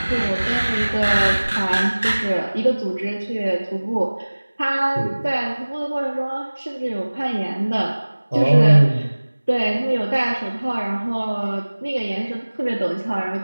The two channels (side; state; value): both; inverted; correlation -1.00